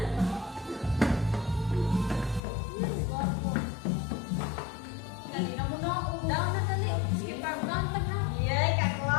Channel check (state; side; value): drops out; right; at 2.4 s